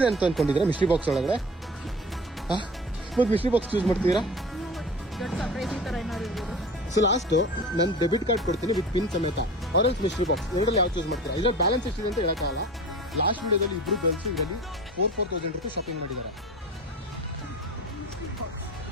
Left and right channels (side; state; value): both; normal; correlation 0.36